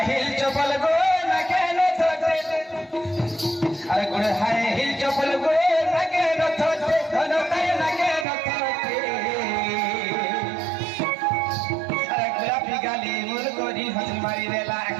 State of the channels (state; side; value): drops out; left; at 8.2 s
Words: হিল চপল গো না কেন আরে গুড়ে হায় হিল চপল গো না কেন ধন তাই না কেন আরে গোলাপি গালি মুল করি হাসি মারি দেলা